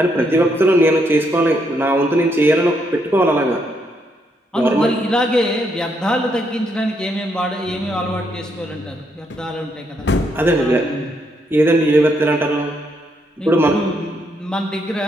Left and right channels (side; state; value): both; normal; correlation 0.76